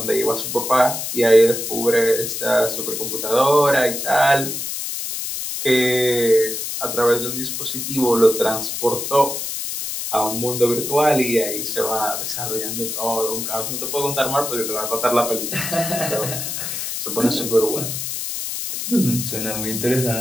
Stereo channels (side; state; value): left; noise; hiss, 4 dB below the sound